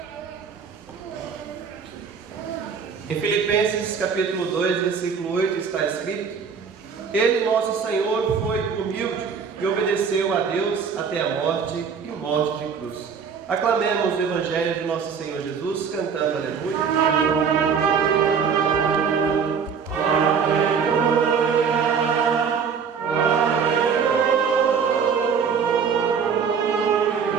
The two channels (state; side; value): quieter; left; 6.3 dB